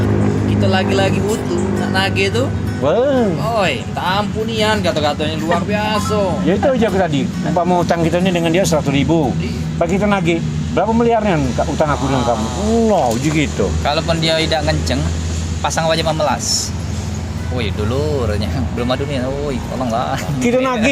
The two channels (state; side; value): identical; both; correlation 1.00